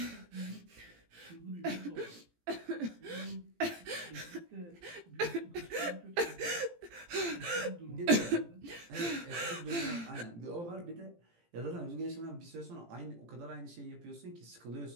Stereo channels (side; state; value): left; late; 17 ms